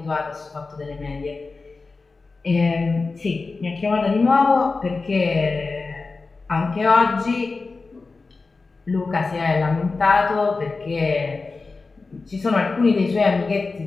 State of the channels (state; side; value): quieter; right; 4.0 dB